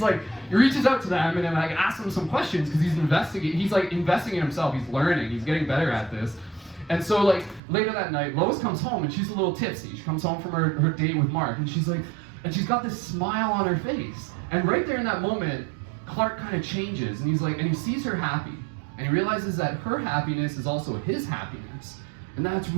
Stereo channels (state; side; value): drops out; left; at 7.6 s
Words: like, he reaches out to them and then like asks them some questions, because he's like investing in himself, he's learning, he's getting better at this. And so like later that night, Lois comes home and she's a little tipsy. She comes home from her date with Mark, and she's like, and she's got this smile on her face. And right there in that moment, Clark kind of changes, and he's like, and he sees her happy, and he realizes that her happiness is also his happiness. And that's